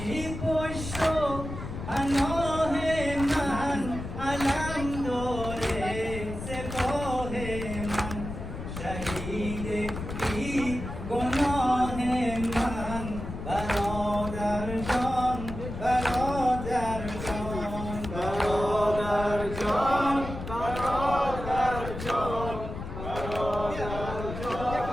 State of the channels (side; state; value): left; noise; rumble, 8 dB below the sound